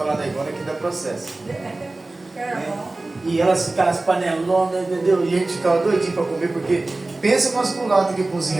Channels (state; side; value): quieter; left; 3.0 dB